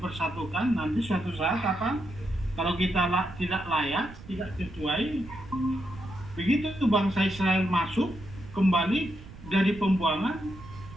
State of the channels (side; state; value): right; noise; rumble, 16 dB below the sound